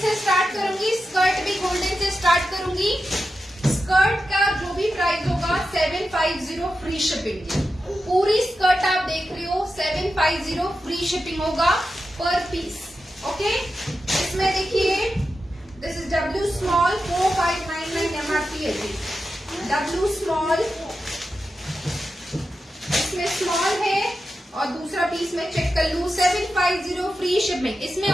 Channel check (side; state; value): both; normal; correlation 0.90